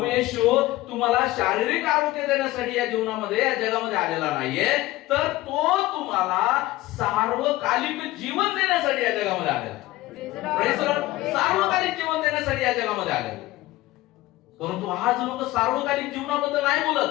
येशू तुम्हाला शारीरिक आरोग्य देण्यासाठी या जीवनामध्ये या जगामध्ये आलेला नाहीये, तर तो तुम्हाला सार्वकालिक जीवन देण्यासाठी या जगामध्ये आलेला. Praise the Lord. सार्वकालिक जीवन देण्यासाठी या जगामध्ये आलेला. परंतु आज लोक सार्वकालिक जीवनाबद्दल नाही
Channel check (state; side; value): quieter; right; 17.7 dB